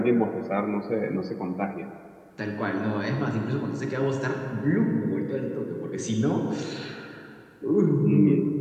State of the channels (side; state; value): both; identical; correlation 1.00